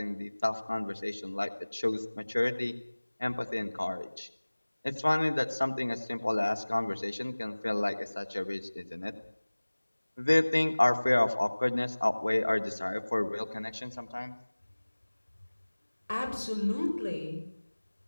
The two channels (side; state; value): both; inverted; correlation -1.00